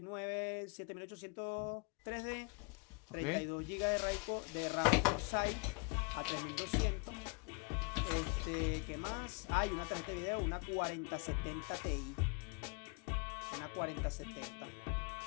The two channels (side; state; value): right; quieter; 30.3 dB